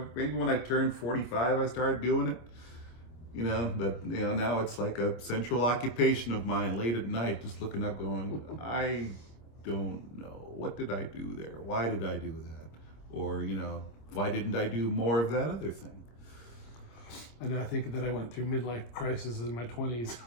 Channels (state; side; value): late; right; 25 ms